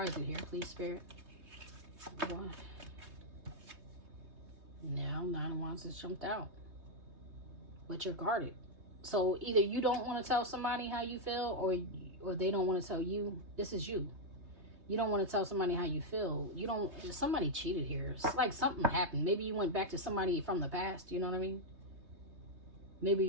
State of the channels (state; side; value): late; left; 3.2 ms